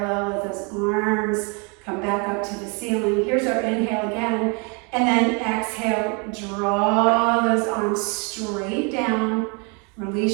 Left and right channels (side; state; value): left; quieter; 32.7 dB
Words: Let those arms Come back up to the ceiling. Here's our inhale again. And then exhale, draw those arms straight down.